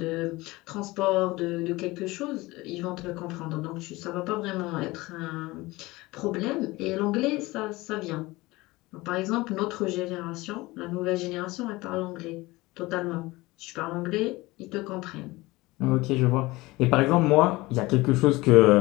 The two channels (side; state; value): right; quieter; 20.9 dB